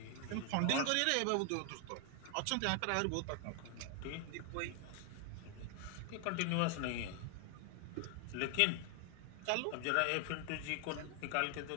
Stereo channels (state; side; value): different; both; correlation 0.00